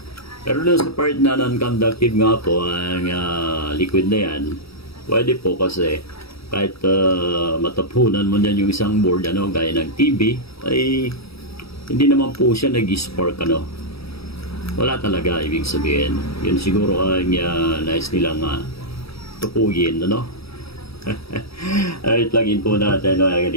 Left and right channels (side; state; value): right; late; 0.77 ms